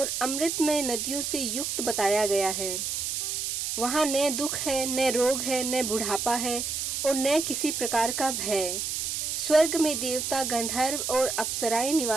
अमृतमय नदियों से युक्त बताया गया है। वहाँ न दुख है, न रोग है, न बुढ़ापा है और न किसी प्रकार का भय। स्वर्ग में देवता, गंधर्व और अप्सराएं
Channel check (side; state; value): right; noise; hiss, 2 dB below the sound